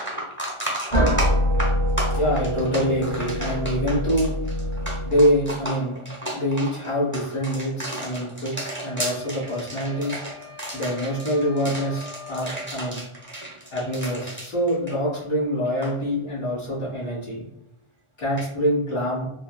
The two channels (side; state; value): right; late; 1.4 ms